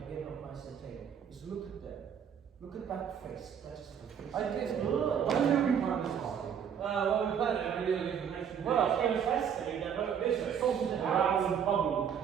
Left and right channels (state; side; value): quieter; left; 8.1 dB